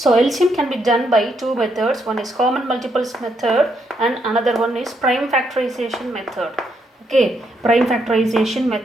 LCM can be done by two methods. One is common multiples method and another one is prime factorization method. Okay, prime factorization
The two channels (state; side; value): normal; both; correlation 0.77